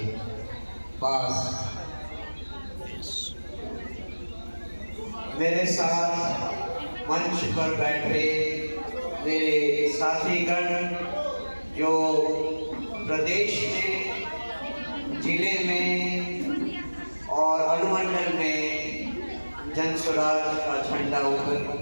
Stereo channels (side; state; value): both; inverted; correlation -1.00